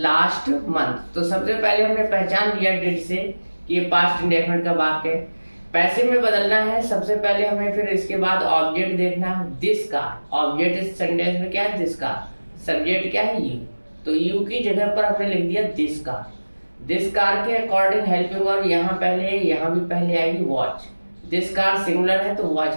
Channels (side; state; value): both; inverted; correlation -1.00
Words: month. तो सबसे पहले हमने पहचान लिया डिड से कि ये पास्ट इंडेफिनिट का वाक्य है। पैसिव में बदलना है, सबसे पहले हमें फिर इसके बाद ऑब्जेक्ट देखना है, दिस कार। ऑब्जेक्ट इस सेंटेंस में क्या है, दिस कार। सब्जेक्ट क्या है, यू। तो यू की जगह पर हमने लिख दिया दिस कार। दिस कार के अकॉर्डिंग हेल्पिंग वर्ब यहाँ पहले, यहाँ भी पहले आएगी वॉच। दिस कार सिंगुलर है तो